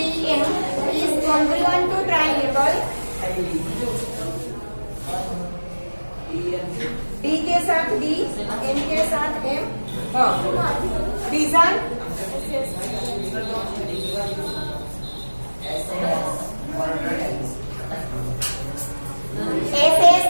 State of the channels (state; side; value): inverted; both; correlation -1.00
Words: is congruent to triangle D के साथ D, M के साथ M. Reason SAS